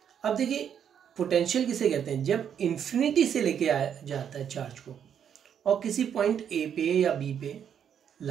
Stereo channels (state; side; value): quieter; left; 8.5 dB